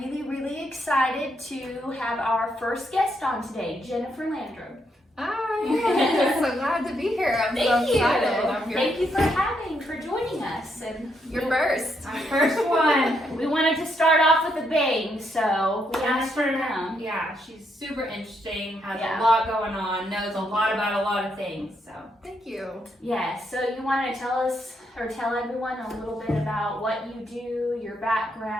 excited to have our first guest on today, Jennifer Landram. Hi, I'm so glad to be here. I'm so excited. I'm here. Thank you for joining us. And You're first. Our first one. We wanted to start off with a bang, so we asked her now. Yeah, she's super interesting, has Yeah. a lot going on, knows a lot about a lot of things. So Thank you. Yes, so you want to tell us or tell everyone a little bit about what you do, your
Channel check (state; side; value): normal; both; correlation 0.77